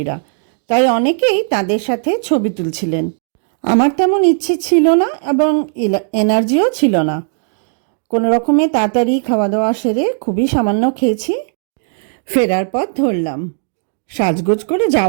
তাই অনেকেই তাদের সাথে ছবি তুলছিলেন। আমার তেমন ইচ্ছে ছিল না এবং এনার্জিও ছিল না। কোনো রকমে তাড়াতাড়ি খাওয়া দাওয়া সেরে খুবই সামান্য খেয়েছি, ফেরার পথ ধরলাম। সাজগোজ করে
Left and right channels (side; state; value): left; silent; 69 dB below the other